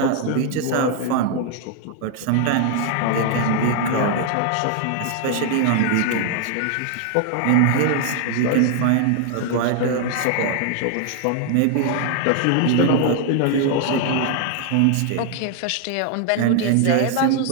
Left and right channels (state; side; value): different; both; correlation 0.00